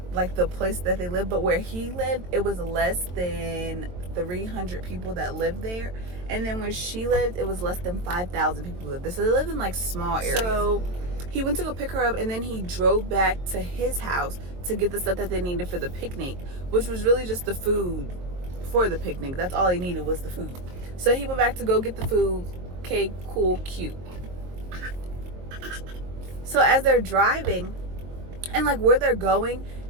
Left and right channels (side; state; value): left; late; 22 ms